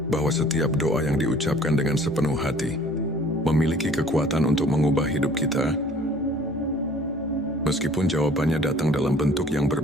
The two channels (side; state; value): both; normal; correlation 0.52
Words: bahwa setiap doa yang diucapkan dengan sepenuh hati memiliki kekuatan untuk mengubah hidup kita. Meskipun jawabannya datang dalam bentuk yang